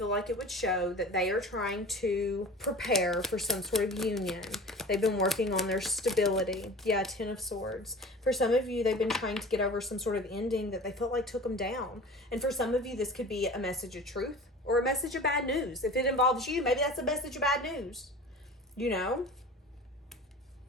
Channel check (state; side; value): normal; both; correlation 0.38